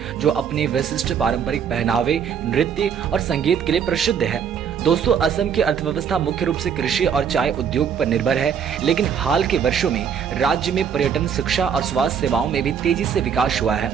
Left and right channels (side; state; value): left; quieter; 7.5 dB